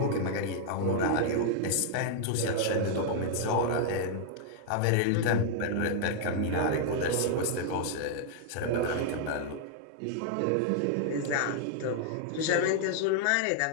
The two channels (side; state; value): both; different; correlation -0.01